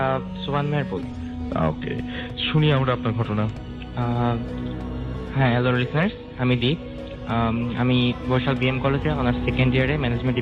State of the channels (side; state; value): both; identical; correlation 1.00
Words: সুবান মেহেরপুর। ওকে, শুনি আমরা আপনার ঘটনা। হ্যাঁ, হ্যালো লিসনার্স, আমি দীপ। আমি বরিশাল বিএম কলেজে অনার্স 2nd ইয়ারে ম্যানেজমেন্ট